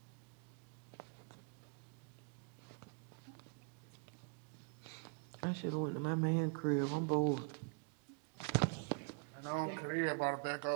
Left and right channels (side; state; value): left; quieter; 36.3 dB